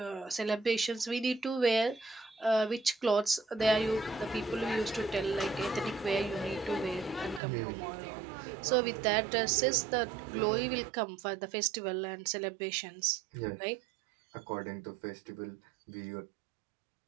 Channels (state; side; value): drops out; left; at 7.4 s